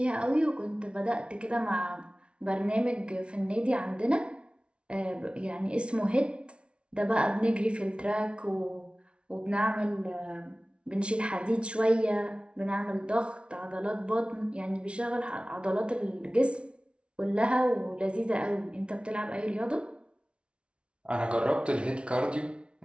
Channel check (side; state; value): left; late; 0.059 ms